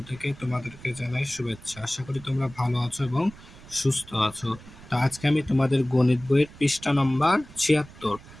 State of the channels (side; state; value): right; noise; rumble, 19 dB below the sound